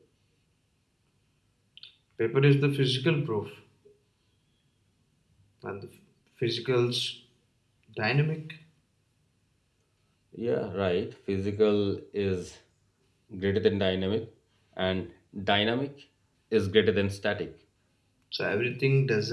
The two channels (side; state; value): both; identical; correlation 1.00